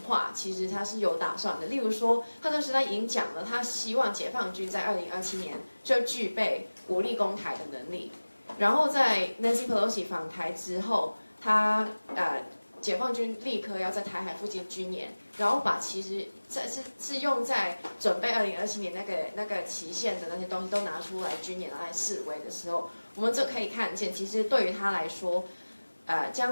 话，其实他是有打算的。例如说，他当时他已经讲了，他希望解放军在2027年就具备武力攻台的能力。然后在 Nancy Pelosi 访台之后，他解放军立刻要在台海附近军演，然后把其实是用在准备2027年那个期限的那些东西都拿出来军演来示威的时候，我们就可以看见，其实对于他来说。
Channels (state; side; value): inverted; both; correlation -1.00